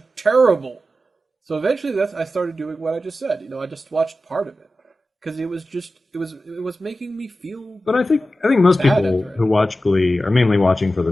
terrible. So eventually, I started doing what I just said. I just watched part of it because it was making me feel. But I think most people who watch Glee are mainly watching for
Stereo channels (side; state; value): both; normal; correlation 0.93